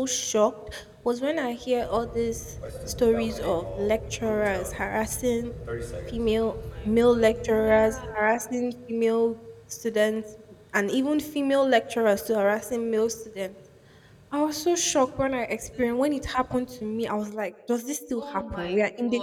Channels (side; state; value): both; identical; correlation 1.00